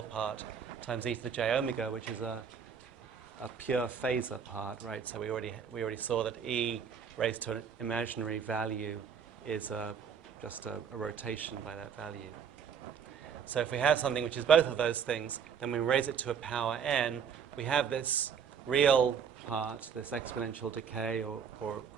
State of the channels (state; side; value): quieter; left; 7.0 dB